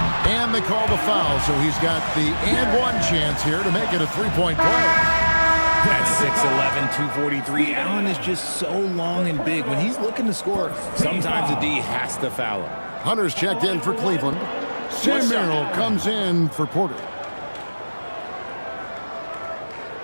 And they call the foul, so he's got the and one chance here to make it a three-point play. That's 6'11", 243. Allen is just so long and big. When he's looking to score, sometimes the D has to foul him. Hunter's checked in for Cleveland. Sam Merrill comes in for Porter.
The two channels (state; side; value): inverted; both; correlation -1.00